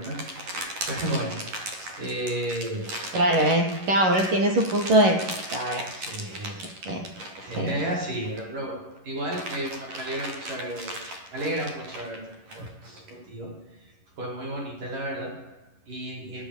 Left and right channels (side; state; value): left; late; 11 ms